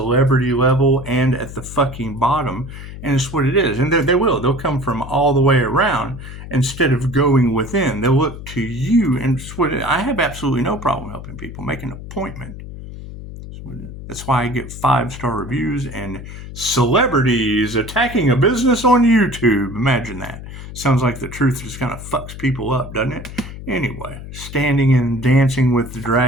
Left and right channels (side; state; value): left; noise; hum, 12 dB below the sound